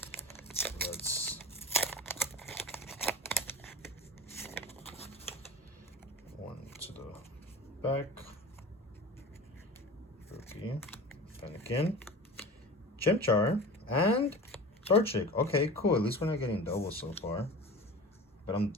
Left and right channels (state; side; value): normal; both; correlation 0.34